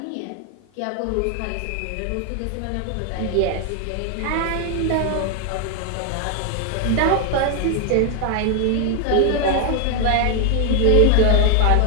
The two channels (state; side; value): different; both; correlation 0.00